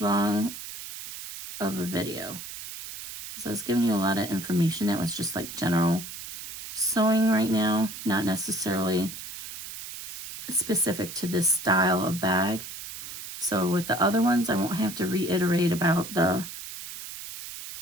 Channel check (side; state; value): right; noise; hiss, 10 dB below the sound